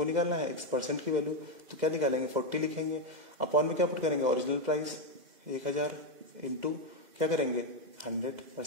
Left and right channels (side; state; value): left; late; 2.1 ms